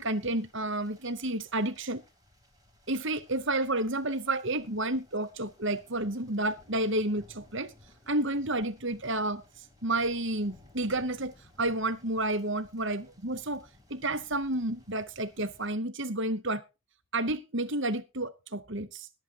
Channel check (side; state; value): both; normal; correlation 0.04